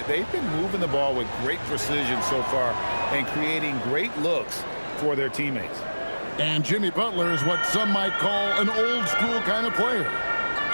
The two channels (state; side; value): inverted; both; correlation -1.00